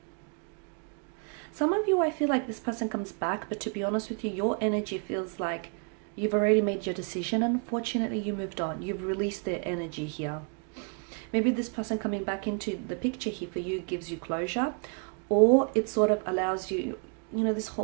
Some of you, I feel like this person comes back, but to be honest with you, your energy feels like you've already made your decision, and unfortunately you moved on. You've released their energy here. Maybe this person coming back into the picture here for you gives you closure, or it sort of allows you, you know, this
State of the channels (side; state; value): left; quieter; 37.2 dB